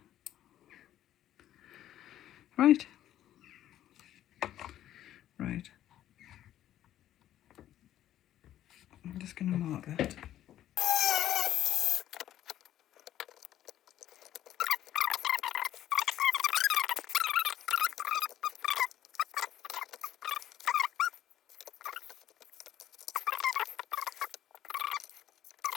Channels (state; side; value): quieter; right; 12.3 dB